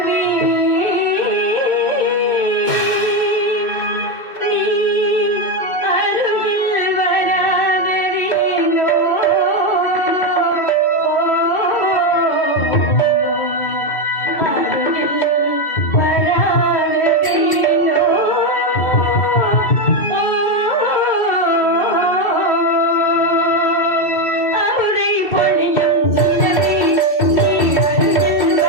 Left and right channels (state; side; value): late; right; 2.6 ms